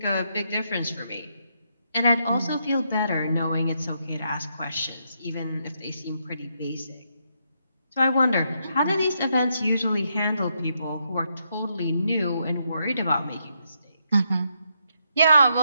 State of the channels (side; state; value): both; inverted; correlation -0.78